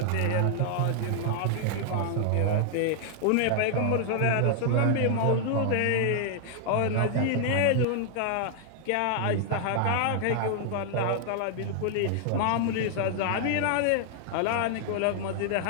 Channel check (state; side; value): different; both; correlation 0.00